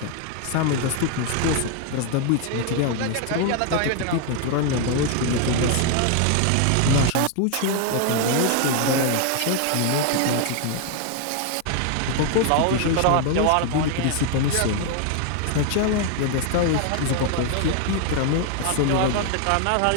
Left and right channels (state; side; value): different; both; correlation 0.01